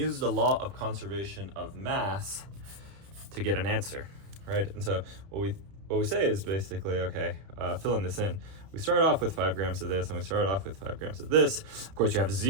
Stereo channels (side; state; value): left; late; 31 ms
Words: the law of conservation of mass to get an answer, right? And so what we say is basically, okay, filling this in. We start off with 5 grams of this, and we start off with 5 grams of this. Of course, you have